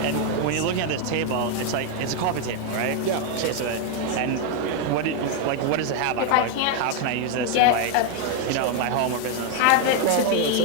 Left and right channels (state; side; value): different; both; correlation 0.01